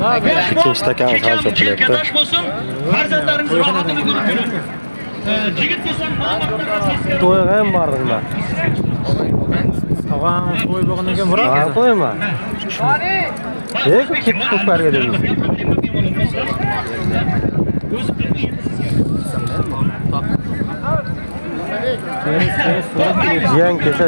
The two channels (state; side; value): inverted; both; correlation -1.00